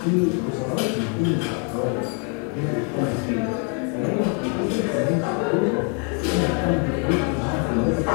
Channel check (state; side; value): quieter; right; 39.2 dB